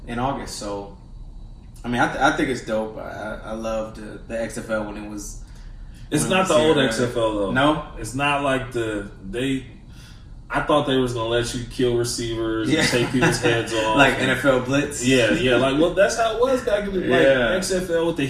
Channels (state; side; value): identical; both; correlation 1.00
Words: in August. So, I mean, I think it's dope. I loved the XFL when it was. It's not the old XFL though. No, it's not like I thought they was gonna let you kill receivers and take people's heads off, like NFL Blitz. Yeah. Like, well, that's how it was back in the XFL with the